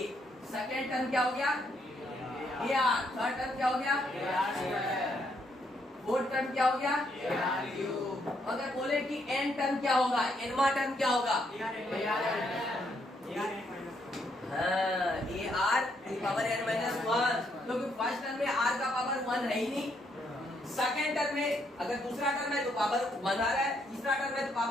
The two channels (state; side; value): normal; both; correlation 0.74